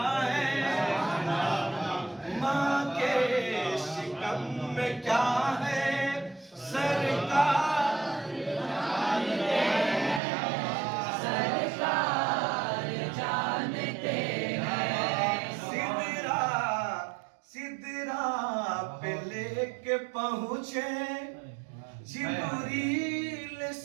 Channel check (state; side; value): drops out; left; at 10.2 s